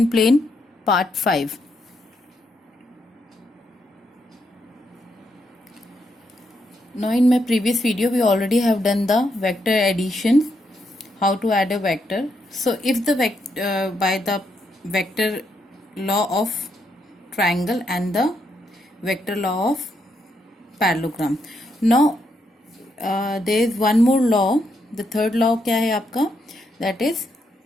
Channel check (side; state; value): both; normal; correlation 0.79